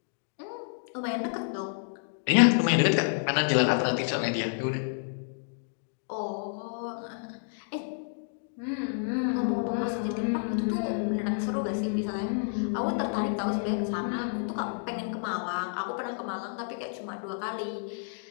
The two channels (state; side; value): silent; right; digital silence